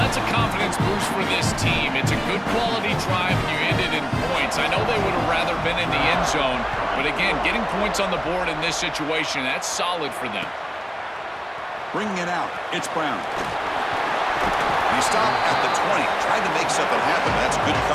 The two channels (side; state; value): both; identical; correlation 1.00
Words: that's a confidence boost for this team. It's a good quality drive, and you ended in points. I know they would have rather been in the end zone, but again, getting points on the board in this situation, that's solid for them. Bringing it out, it's Brown. He stopped at the 20, tried to make something happen. That's good